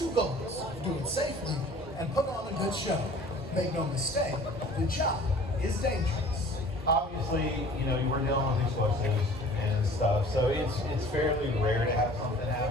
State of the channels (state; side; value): normal; both; correlation 0.48